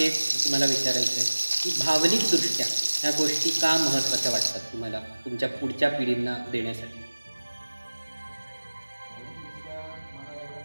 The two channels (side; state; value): both; inverted; correlation -1.00